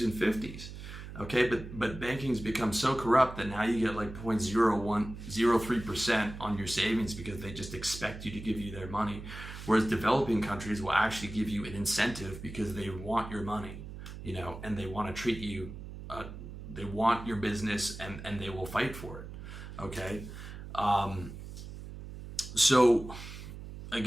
and 50s. Okay, but banking's become so corrupt that now you get like 0.0103% on your savings because they just expect you to give you their money. Whereas developing countries will actually give you an incentive because they want your money, and they want to treat you, they want your business and they will fight for it. Okay. So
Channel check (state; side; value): noise; right; hum, 11 dB below the sound